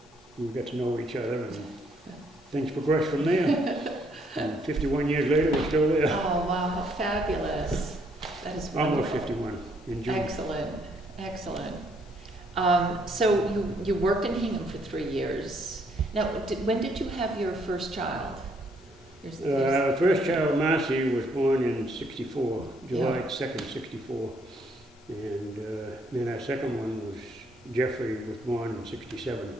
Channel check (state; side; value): normal; both; correlation 0.69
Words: we got to know each other, and things progressed from there. And 51 years later, we're still there. Oh, wow, how fabulous. That is Almost wonderful. 51 in June. Excellent, excellent. So you worked in Hingham for 3 years. Now, when did you have your first child? First child, Marcy, was born in 64, July Yeah. 2nd, 64. And then our second one was Jeffrey, was born in 67.